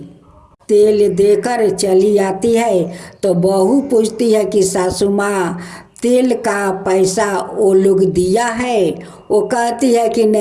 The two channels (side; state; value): both; identical; correlation 1.00